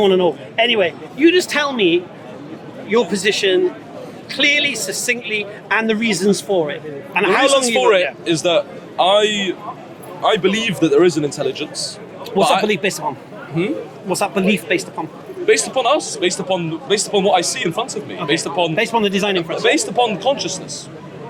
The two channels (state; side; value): identical; both; correlation 1.00